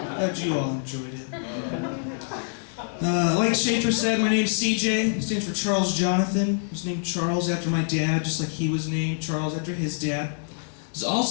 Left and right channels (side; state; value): right; silent; digital silence